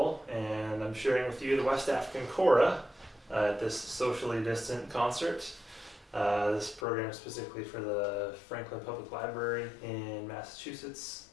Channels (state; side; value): drops out; right; at 6.9 s